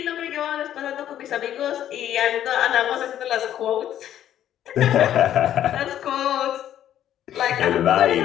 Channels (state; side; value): quieter; right; 11.2 dB